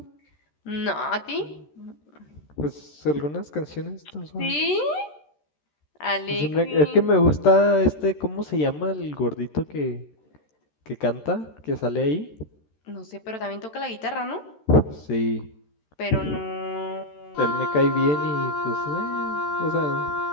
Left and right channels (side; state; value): right; late; 13 ms